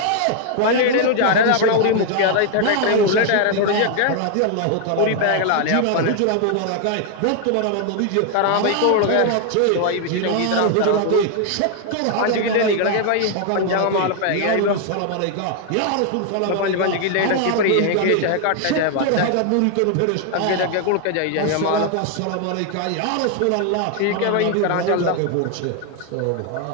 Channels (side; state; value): both; different; correlation 0.00